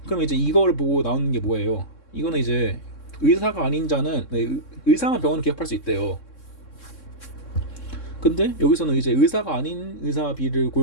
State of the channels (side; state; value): right; late; 3.6 ms